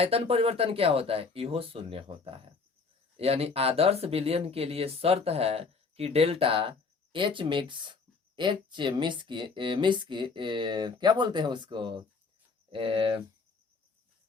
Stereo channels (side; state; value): right; quieter; 4.5 dB